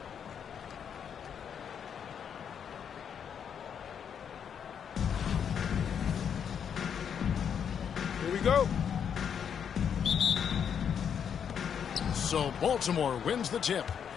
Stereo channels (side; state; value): right; quieter; 7.8 dB